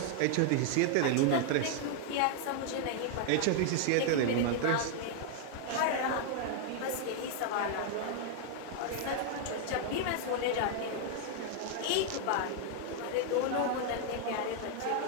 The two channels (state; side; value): different; both; correlation 0.00